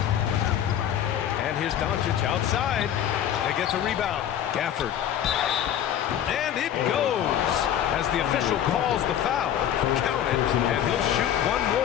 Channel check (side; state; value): right; quieter; 10.4 dB